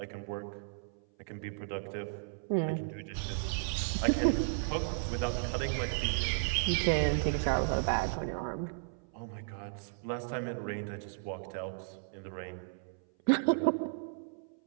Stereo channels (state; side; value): silent; left; 55 dB below the other